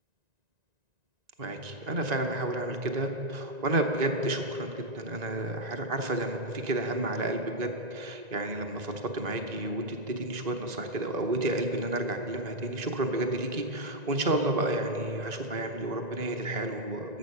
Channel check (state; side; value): late; left; 1.9 ms